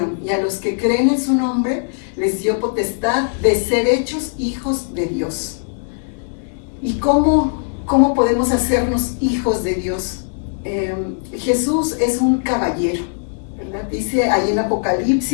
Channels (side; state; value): right; silent; digital silence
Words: y a los que creen en su nombre, les dio potestad de ser hechos hijos de Dios. ¿Y cómo podemos hacernos hijos de Dios? Jesús es un caballero. Dice ahí en